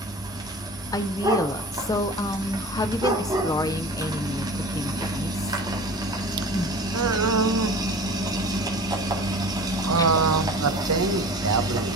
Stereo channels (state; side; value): normal; both; correlation 0.38